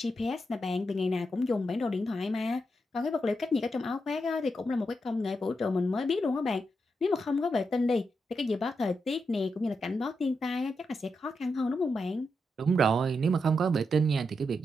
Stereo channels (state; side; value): normal; both; correlation 0.84